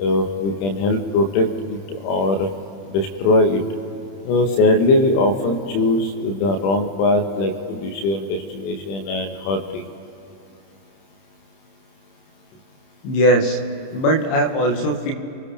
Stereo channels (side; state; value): right; late; 31 ms